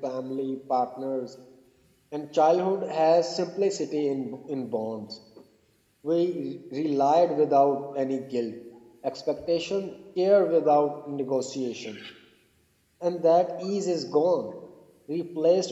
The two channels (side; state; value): both; identical; correlation 1.00